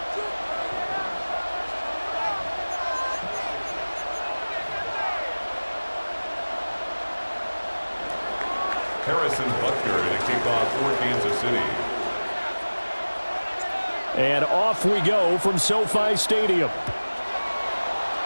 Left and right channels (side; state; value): both; inverted; correlation -1.00